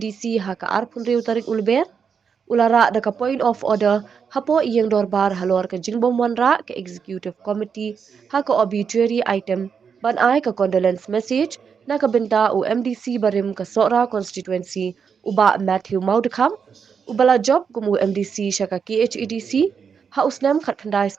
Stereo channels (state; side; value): quieter; left; 6.5 dB